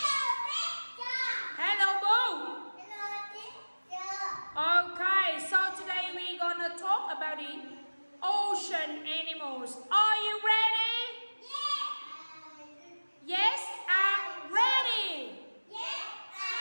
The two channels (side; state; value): both; inverted; correlation -1.00